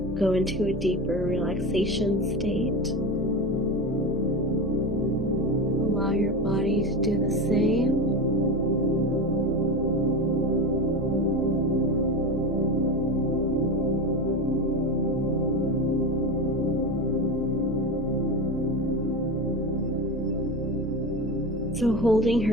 go into a deeper relaxation state. Allow your body to do the same. So holding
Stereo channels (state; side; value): normal; both; correlation 0.22